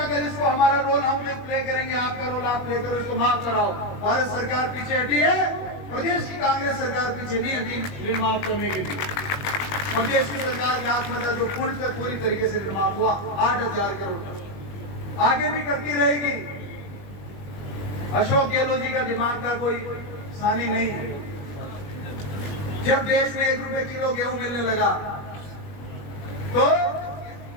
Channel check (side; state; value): right; late; 21 ms